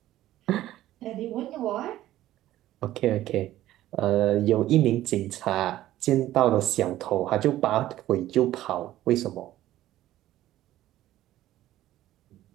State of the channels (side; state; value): left; quieter; 14.2 dB